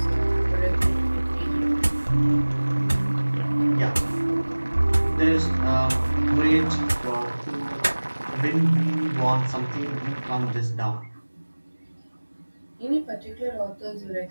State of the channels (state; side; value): inverted; both; correlation -1.00